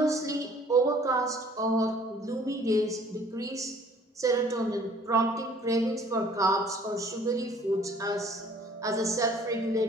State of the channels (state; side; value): normal; both; correlation 0.55